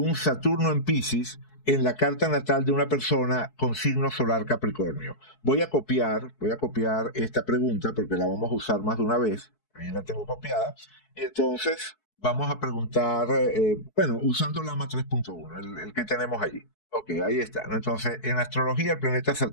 Saturno en Piscis en la carta natal de una persona con signo solar Capricornio? Voy a copiar esta pregunta porque la vamos a usar más de una vez. Ahí la tengo copiada. Entonces, vamos a preguntar, usando Lama 3.1, el que tenemos allí. Ok, ahí está, ¿no? Entonces, en astrología, el planeta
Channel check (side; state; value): right; late; 4.6 ms